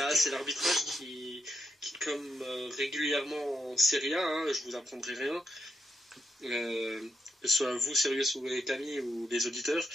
c'est l'arbitrage qui comme régulièrement en Serie A, hein, je vous apprendrai rien, que ce soit vous, Sirius ou les Camille ou les auditeurs,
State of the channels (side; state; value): both; normal; correlation 0.81